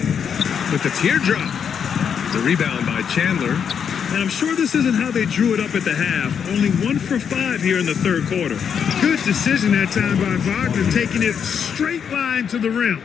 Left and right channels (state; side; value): quieter; right; 7.4 dB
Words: With the teardrop. The rebound by Chandler. And I'm sure this isn't how they drew it up at the half. Only 1 for 5 here in the third quarter. Good decision that time by Wagner, taking it straight line to the rim.